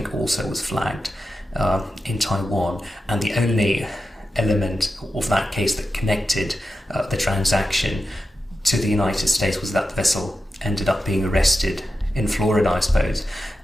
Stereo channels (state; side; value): normal; both; correlation 0.91